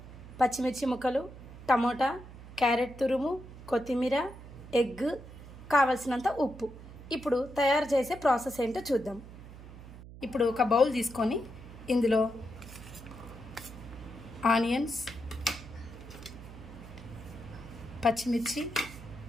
పచ్చిమిర్చి ముక్కలు, టమోటా, క్యారెట్ తురుము, కొత్తిమీర, ఎగ్, కావలసినంత ఉప్పు. ఇప్పుడు తయారు చేసే ప్రాసెస్ ఏంటో చూద్దాం. ఇప్పుడు ఒక బౌల్ తీసుకొని ఇందులో ఆనియన్స్, పచ్చిమిర్చి,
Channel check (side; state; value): right; noise; hum, 15 dB below the sound